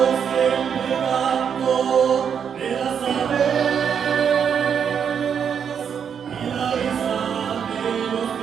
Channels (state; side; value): quieter; left; 7.5 dB